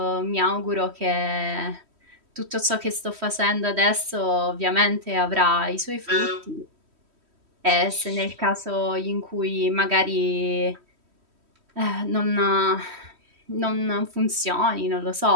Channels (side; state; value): left; late; 3.1 ms